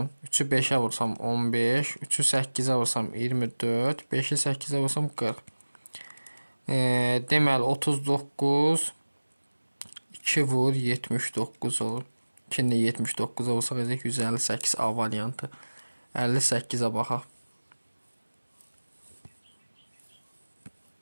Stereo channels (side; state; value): both; inverted; correlation -1.00